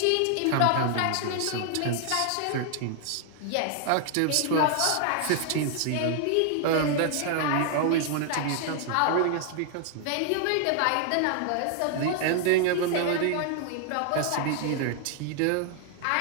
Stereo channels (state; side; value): different; both; correlation 0.00